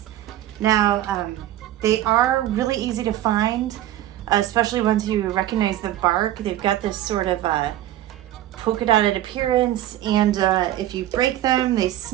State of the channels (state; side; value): quieter; left; 13.4 dB